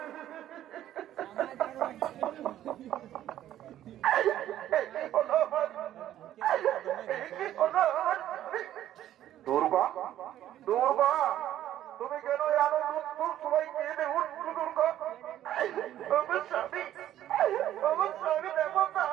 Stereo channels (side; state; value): left; quieter; 12.3 dB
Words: দুর্গা দুর্গা তুমি কেন জানো দুধ সবাই কেঁদে উঠছো দুর্গা? আমার স্বামী দেখো